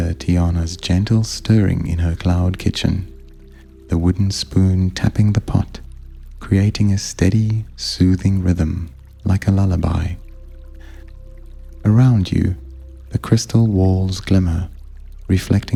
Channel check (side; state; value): both; identical; correlation 1.00